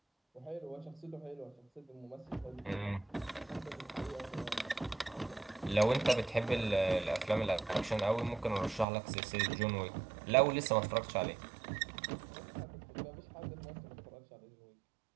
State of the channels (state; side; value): drops out; left; at 8.8 s